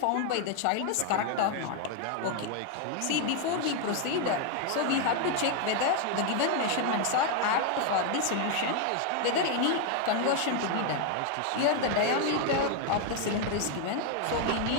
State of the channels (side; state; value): both; different; correlation 0.01